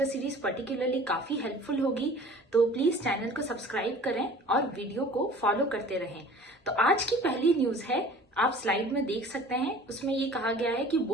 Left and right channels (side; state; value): both; normal; correlation 0.46